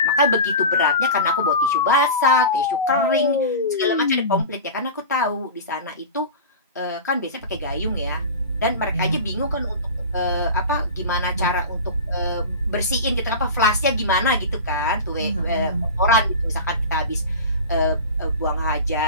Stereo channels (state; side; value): inverted; both; correlation -0.30